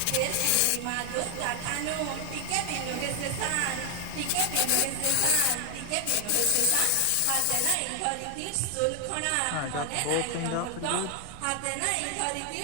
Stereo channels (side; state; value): both; different; correlation 0.00